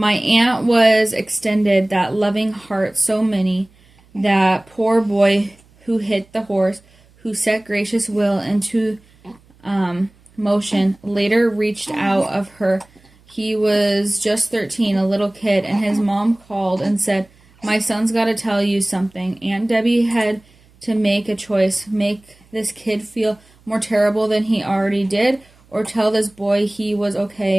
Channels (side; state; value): right; noise; hum, 30 dB below the sound